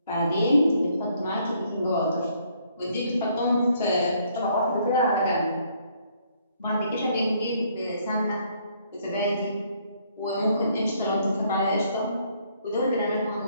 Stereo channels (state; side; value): inverted; both; correlation -0.67